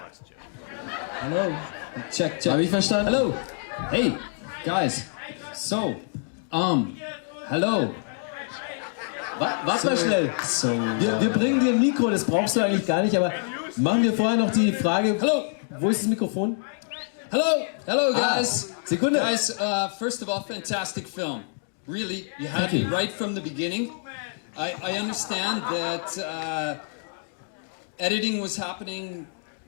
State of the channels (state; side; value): silent; right; 61 dB below the other